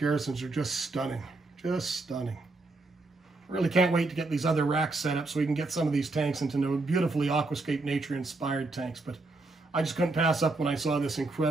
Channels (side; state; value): left; quieter; 3.2 dB